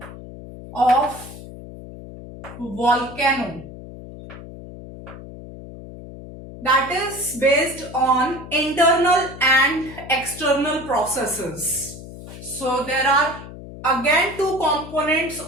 of volcano, that is based on internal and external processes. So there are again two components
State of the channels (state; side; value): noise; left; hum, 14 dB below the sound